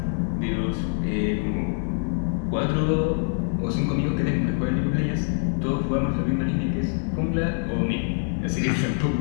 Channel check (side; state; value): right; silent; 62 dB below the other